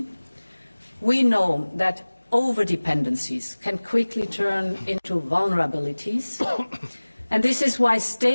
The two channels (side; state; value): both; inverted; correlation -1.00